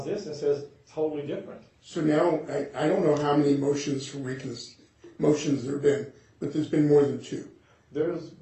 this and says totally different. now I don't know how many motions motions there have been, but there's been more than two There's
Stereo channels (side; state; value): both; identical; correlation 1.00